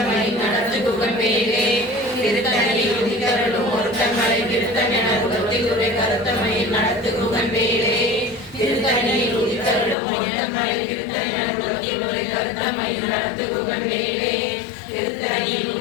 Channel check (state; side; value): drops out; right; at 10.0 s